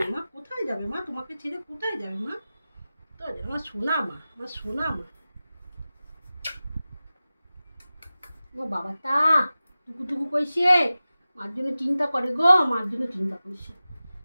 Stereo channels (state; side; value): inverted; both; correlation -0.96